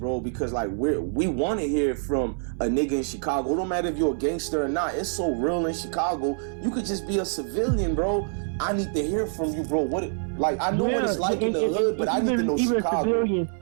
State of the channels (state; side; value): silent; left; 61 dB below the other